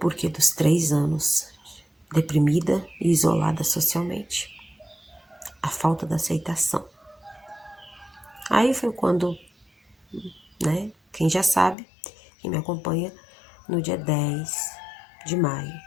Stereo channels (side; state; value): right; drops out; at 11.8 s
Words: dos 3 anos, deprimida e isolada socialmente. A falta da aceitação. Aí foi quando, né, quem já sabe, quem me acompanha, no dia 10 de maio,